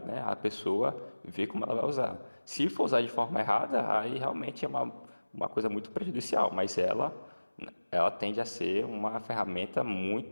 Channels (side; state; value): both; inverted; correlation -1.00